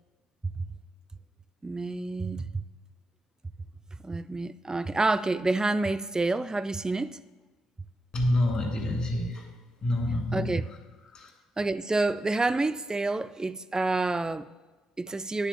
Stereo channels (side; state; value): both; normal; correlation 0.90